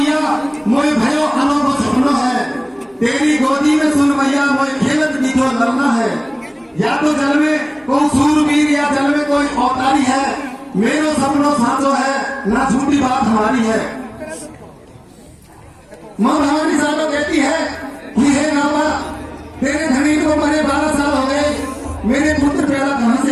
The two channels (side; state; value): both; identical; correlation 1.00